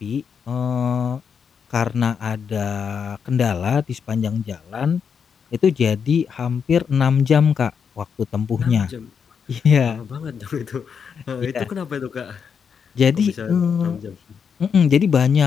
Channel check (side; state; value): right; quieter; 6.7 dB